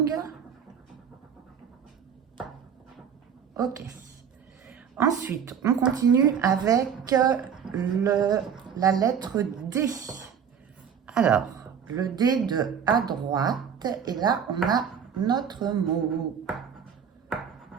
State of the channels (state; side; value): quieter; left; 7.6 dB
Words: Ok. Ensuite, on continue avec la lettre D. Alors, le D de à droite. Et là, on a notre mot.